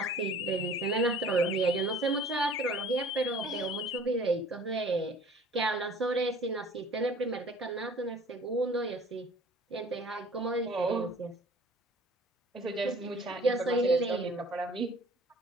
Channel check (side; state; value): both; normal; correlation 0.50